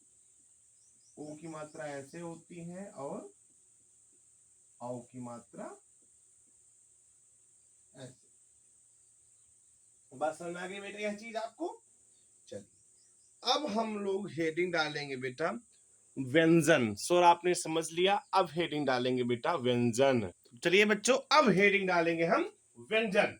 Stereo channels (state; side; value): identical; both; correlation 1.00